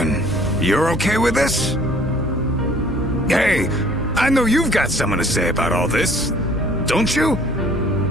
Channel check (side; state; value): both; normal; correlation 0.55